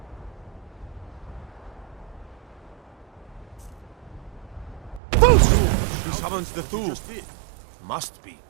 He summons the Thule. Must be.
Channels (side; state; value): left; drops out; at 5.0 s